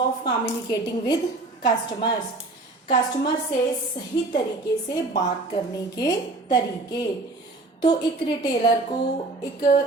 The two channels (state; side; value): quieter; left; 3.1 dB